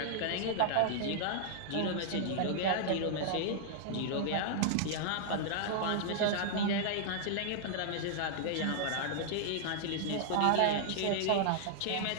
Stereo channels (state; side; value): different; both; correlation -0.01